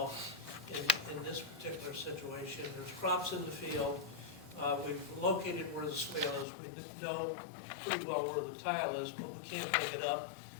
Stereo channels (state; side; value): drops out; right; at 6.5 s